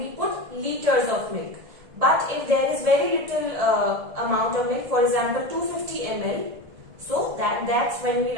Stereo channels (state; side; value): late; left; 1.7 ms